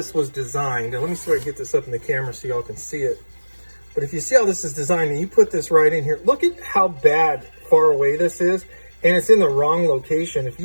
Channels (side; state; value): both; inverted; correlation -1.00